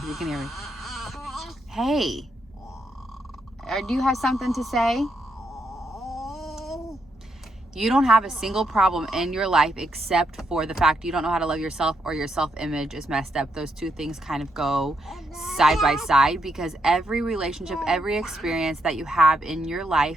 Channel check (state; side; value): normal; both; correlation 0.79